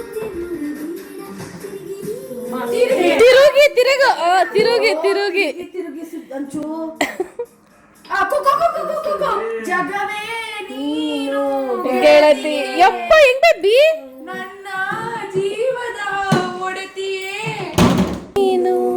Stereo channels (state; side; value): identical; both; correlation 1.00